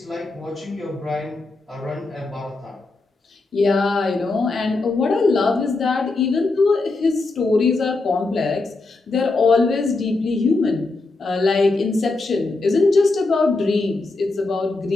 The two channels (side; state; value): right; quieter; 3.4 dB